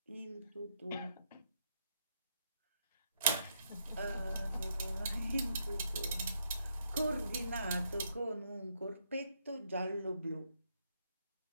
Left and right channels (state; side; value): inverted; both; correlation -0.76